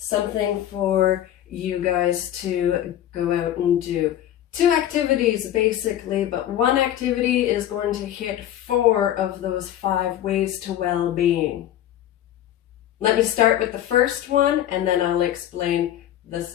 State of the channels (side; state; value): right; quieter; 11.8 dB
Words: for you guys to go out and do. 2 activities basically, but one activity is going to hit 4 of those 5 ways to well-being. Let me start with the first one and then I'll explain the